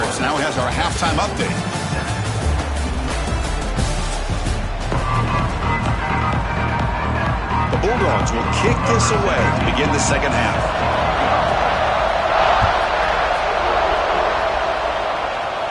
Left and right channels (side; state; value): both; identical; correlation 1.00